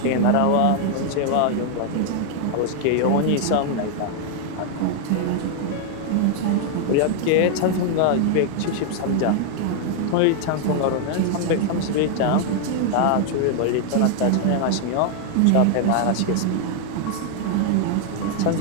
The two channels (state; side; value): different; both; correlation 0.00